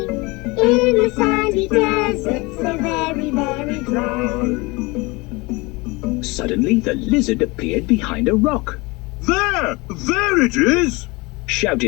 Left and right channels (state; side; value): quieter; right; 24.8 dB